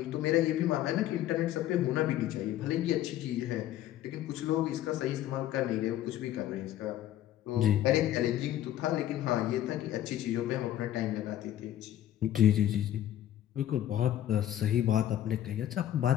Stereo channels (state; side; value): quieter; right; 12.4 dB